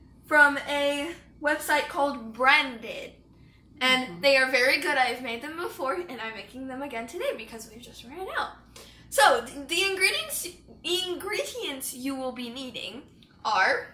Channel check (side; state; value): both; identical; correlation 1.00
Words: from a website called Branded. And they are very good. I've made them before, and I'm making them again today because we've just ran out. So, the ingredients you will be needing